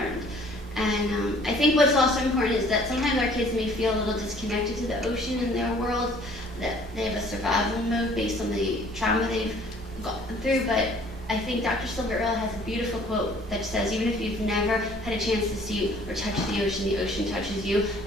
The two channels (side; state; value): both; normal; correlation 0.55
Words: And I think what's also important is that sometimes our kids may feel a little disconnected to the ocean in their world, that they have a survival mode based on the trauma they've gone through. But I think Dr. Silver-Earle has a beautiful quote that says, even if you've never had a chance to see or touch the ocean touches you.